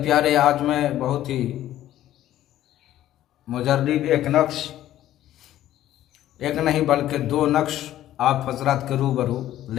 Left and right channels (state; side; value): quieter; right; 13.1 dB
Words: आज मैं बहुत ही मुजर्रिब एक नक्श, एक नहीं बल्कि दो नक्श आप हजरात के रूबरू